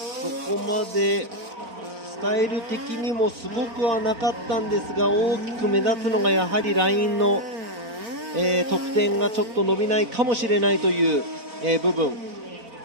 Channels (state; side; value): late; left; 4.4 ms